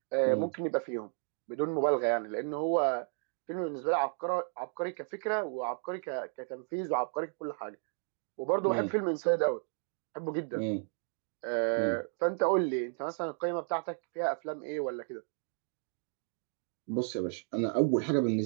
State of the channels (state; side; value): silent; left; 55 dB below the other